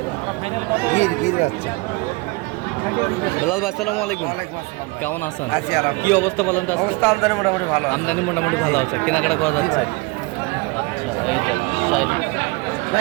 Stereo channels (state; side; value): quieter; left; 25.5 dB